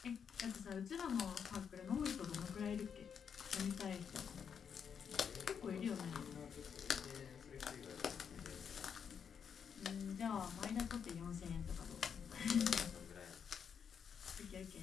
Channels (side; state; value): right; quieter; 7.2 dB